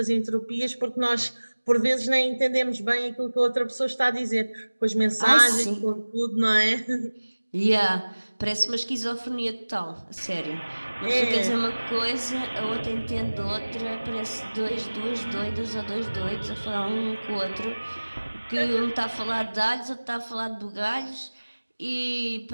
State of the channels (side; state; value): both; inverted; correlation -1.00